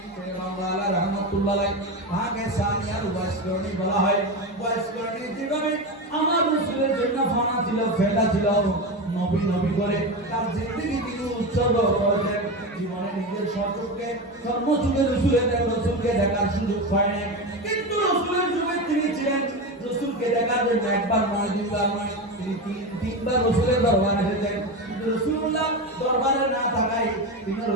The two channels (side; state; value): both; normal; correlation 0.20